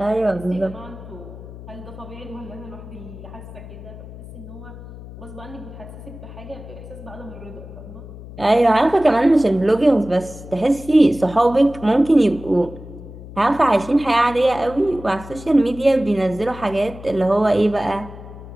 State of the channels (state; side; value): noise; left; hum, 15 dB below the sound